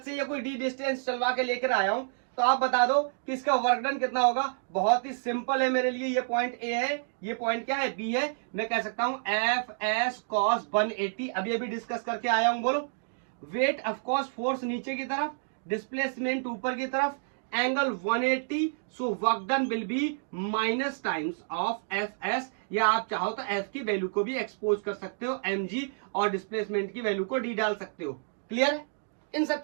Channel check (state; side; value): silent; left; digital silence